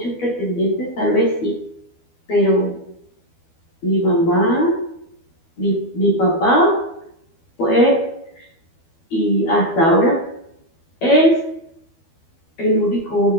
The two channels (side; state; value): right; late; 12 ms